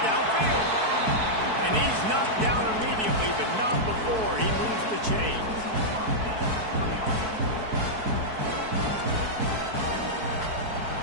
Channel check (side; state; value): left; late; 4.6 ms